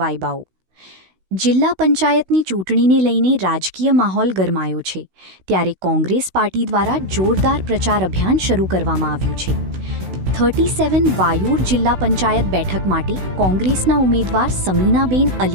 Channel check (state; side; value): late; left; 16 ms